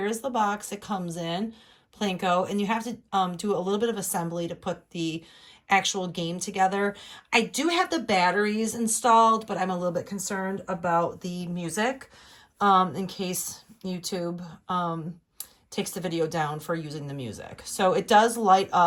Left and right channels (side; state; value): both; identical; correlation 1.00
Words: the box it comes in, Plinko, and you have to do a little bit of assembly to put the actual game together. I do have the batteries installed, but I'm a little bit concerned about the music in case YouTube takes the video down for using the music. So it does light